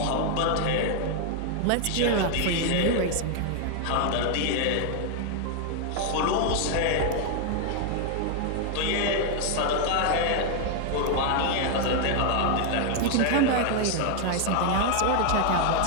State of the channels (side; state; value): both; different; correlation 0.00